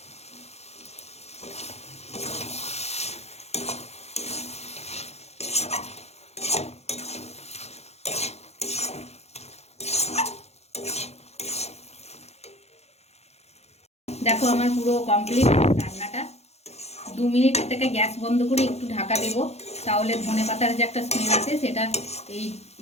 দেখো আমার পুরো কমপ্লিট রান্নাটা। 2 মিনিট থেকে গ্যাস বন্ধ করে একটু ঢাকা দেবো, তাহলে ধনে পাতার যে একটা স্মেল আছে সেটা এই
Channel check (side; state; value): right; late; 0.31 ms